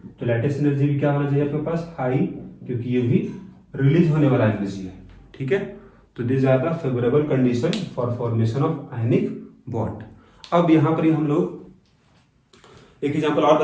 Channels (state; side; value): identical; both; correlation 1.00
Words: तो लैटिस एनर्जी भी क्या होना चाहिए आपके पास, हाई, क्योंकि ये भी रिलीज होने वाला एनर्जी है। ठीक है। तो this are the favourable condition for formation of ionic bond. अब यहाँ पर हम लोग एक एग्जांपल और